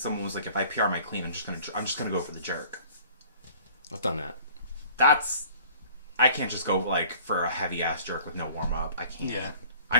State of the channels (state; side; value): inverted; both; correlation -0.50